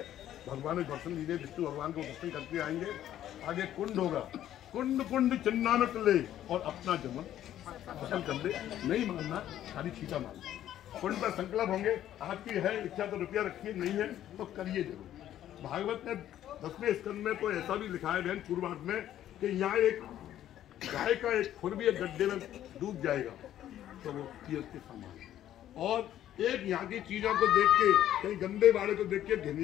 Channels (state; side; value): quieter; right; 11.9 dB